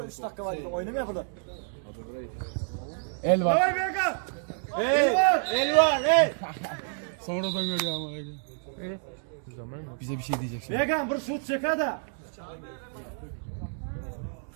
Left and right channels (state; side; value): silent; left; 59 dB below the other